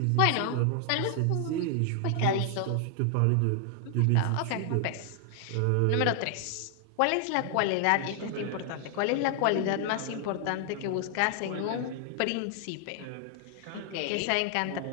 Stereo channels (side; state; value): both; different; correlation 0.00